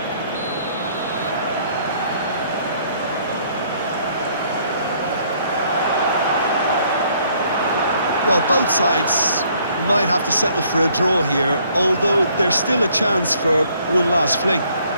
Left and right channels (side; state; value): both; inverted; correlation -0.64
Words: Well, both sides might have to settle for a draw here, although there's still a chance for one last fling.